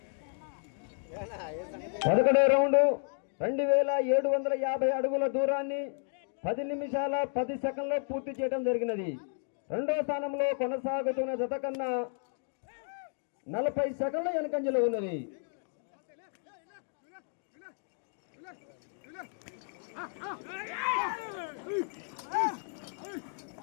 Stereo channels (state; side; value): silent; right; 56 dB below the other